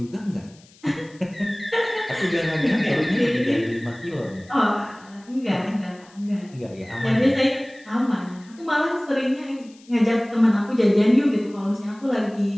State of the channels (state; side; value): noise; left; hiss, 27 dB below the sound